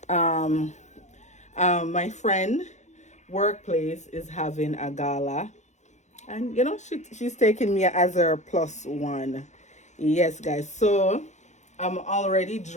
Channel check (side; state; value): right; late; 0.34 ms